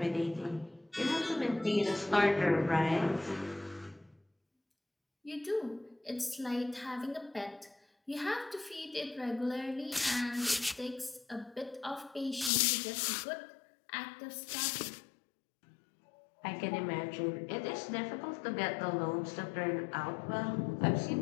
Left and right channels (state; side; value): drops out; right; at 12.5 s